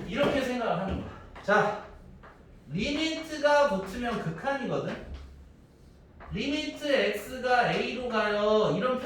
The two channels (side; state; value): both; identical; correlation 1.00